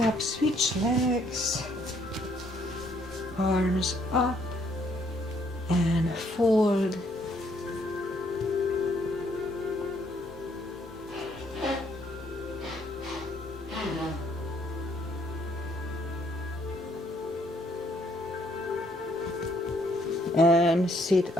switch legs, arms up and fold. And sit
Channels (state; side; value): normal; both; correlation 0.68